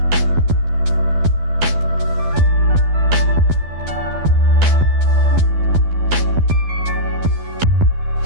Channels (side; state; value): left; late; 12 ms